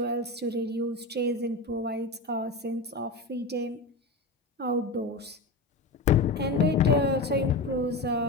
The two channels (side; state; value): right; quieter; 3.0 dB